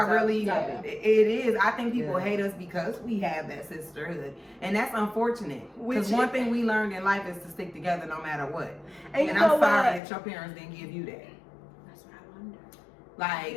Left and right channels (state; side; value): drops out; right; at 10.0 s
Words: topic. really, Yeah. it is. I think people Yeah. hate us because we have that sisterhood. And that's unfortunate. Because Which one is- thing we learned in life is to stick together no matter what. And you And know I'm sorry what? that your parents didn't give you that. That's what I wonder. Like,